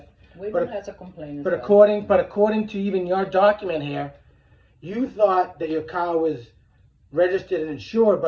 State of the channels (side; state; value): both; identical; correlation 1.00